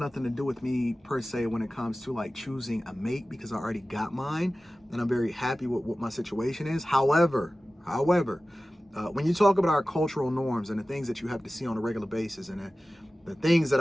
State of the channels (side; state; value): both; normal; correlation 0.96